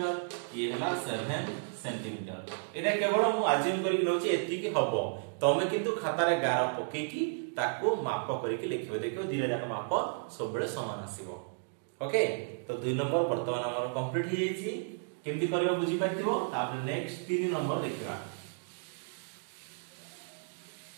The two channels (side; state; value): left; silent; digital silence